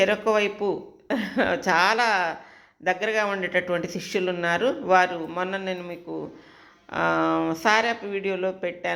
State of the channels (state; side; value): identical; both; correlation 1.00